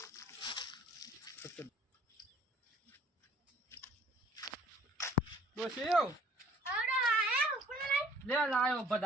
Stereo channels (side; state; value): both; normal; correlation 0.56